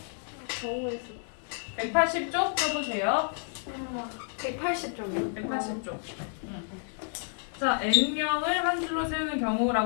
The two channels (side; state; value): right; silent; 58 dB below the other